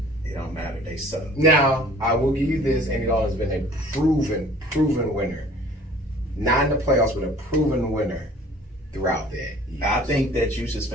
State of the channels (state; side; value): normal; both; correlation 0.50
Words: It don't matter. They suck. Now, I will give you this. Andy Dalton has been a proven winner. Not in the playoffs, but a proven winner throughout that. I think that you should